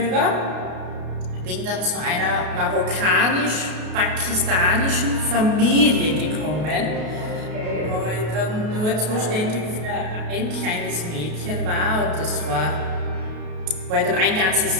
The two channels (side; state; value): left; late; 33 ms